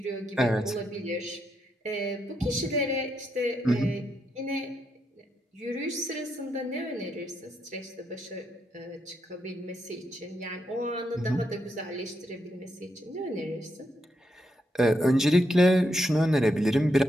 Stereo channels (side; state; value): both; normal; correlation 0.81